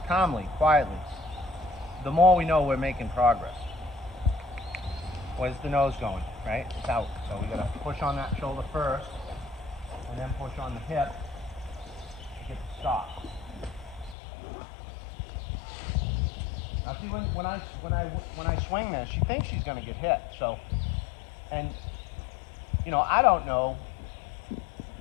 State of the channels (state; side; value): drops out; right; at 14.2 s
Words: calmly, quietly, the more we know we're making progress. Where's the nose going, right? It's out. So we gotta push on that shoulder first, and then push on the hip to get the stop. Now see, when I swing this, she thinks she's gonna get hit. So, and you know, I don't know.